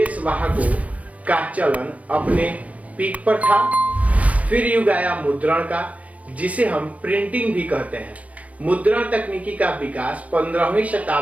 वाहकों का चलन अपने पीक पर था। फिर युग आया मुद्रण का, जिसे हम प्रिंटिंग भी कहते हैं। मुद्रण तकनीकी का विकास 15वीं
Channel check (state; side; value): late; left; 0.067 ms